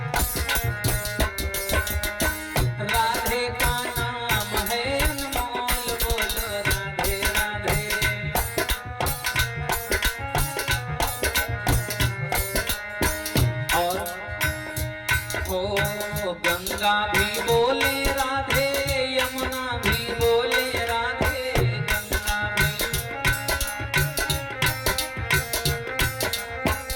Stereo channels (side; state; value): both; identical; correlation 1.00